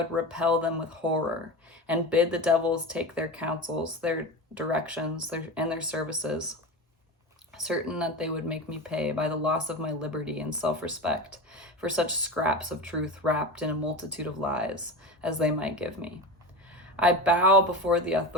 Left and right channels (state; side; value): normal; both; correlation 0.25